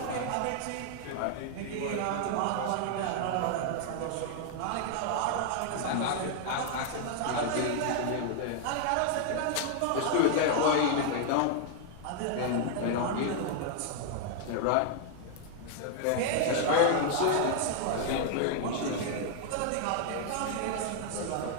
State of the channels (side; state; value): both; different; correlation 0.00